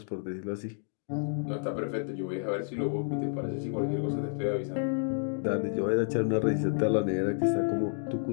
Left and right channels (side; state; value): right; silent; digital silence